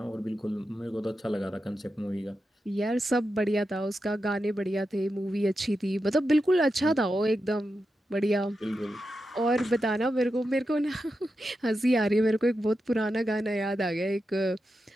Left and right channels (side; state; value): both; normal; correlation 0.89